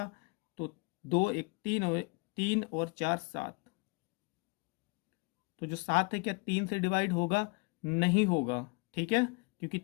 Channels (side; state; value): right; quieter; 31.4 dB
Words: तो 2 × 3 और 4 7, तो जो 7 है क्या 3 से डिवाइड होगा, नहीं होगा, ठीक है, क्योंकि